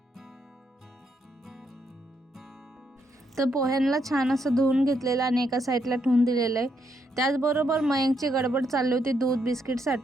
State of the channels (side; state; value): both; normal; correlation 0.77